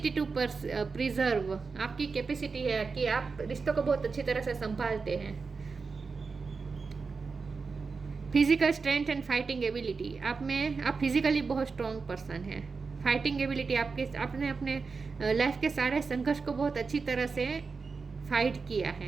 to preserve, आपकी कैपेसिटी है कि आप रिश्तों को बहुत अच्छी तरह से संभालते हैं। Physical strength and fighting ability, आप फिजिकली बहुत स्ट्रॉन्ग पर्सन हैं। फाइटिंग एबिलिटी, आपने अपने लाइफ के सारे संघर्ष को बहुत अच्छी तरह से फाइट किया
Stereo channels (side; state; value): left; quieter; 4.7 dB